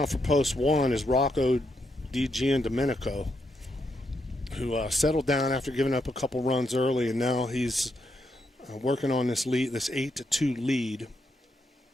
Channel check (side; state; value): both; normal; correlation 0.80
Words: for Post 1 is Rocco DiGiandomenico, who settled down after giving up a couple runs early, and now he's working on this 8-2 lead